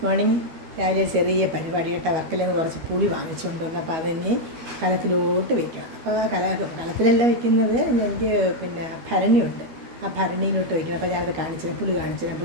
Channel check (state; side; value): late; left; 12 ms